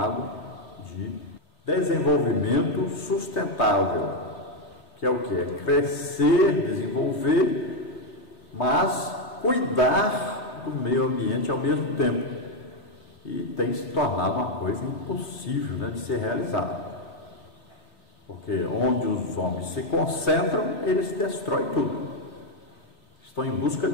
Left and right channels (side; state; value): right; late; 3.2 ms